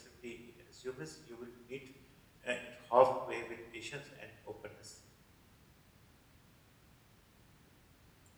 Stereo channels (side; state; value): both; identical; correlation 1.00